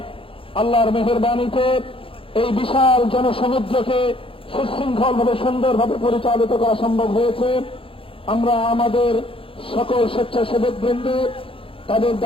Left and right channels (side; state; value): right; late; 0.26 ms